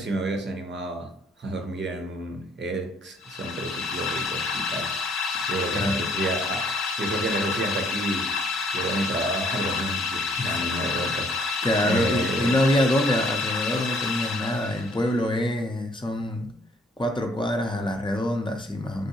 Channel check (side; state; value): both; normal; correlation 0.63